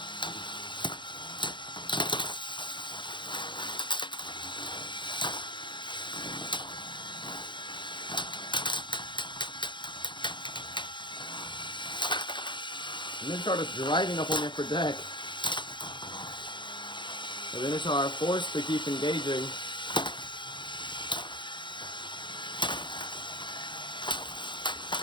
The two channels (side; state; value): right; late; 0.23 ms